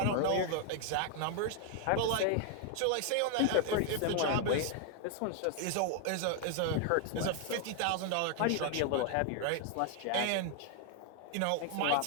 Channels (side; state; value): both; different; correlation 0.00